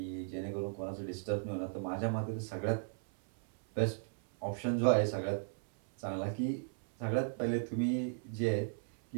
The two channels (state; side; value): silent; left; 54 dB below the other